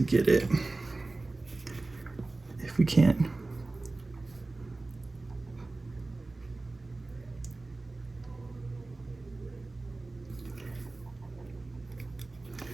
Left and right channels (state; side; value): quieter; left; 3.2 dB